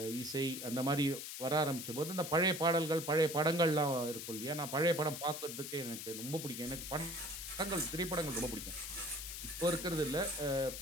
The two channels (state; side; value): noise; left; hiss, 7 dB below the sound